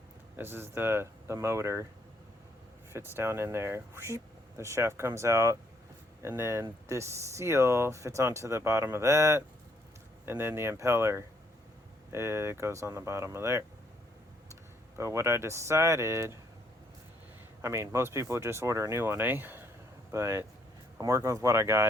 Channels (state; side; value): normal; both; correlation 0.70